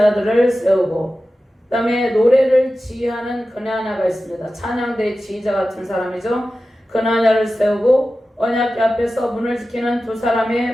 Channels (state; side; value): normal; both; correlation 0.94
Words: 세우고 그 다음에 노래를 지휘하는 그나냐가 있습니다. 찬양대의 지휘자 같은 사람이죠. 그나냐를 세우고 언약궤 앞에서 문을 지키는 두